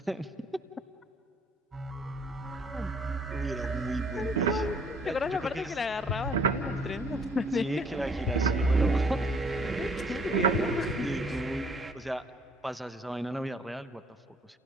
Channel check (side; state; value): both; normal; correlation 0.59